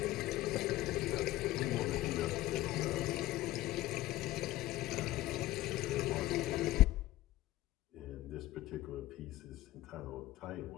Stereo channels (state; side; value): quieter; right; 16.4 dB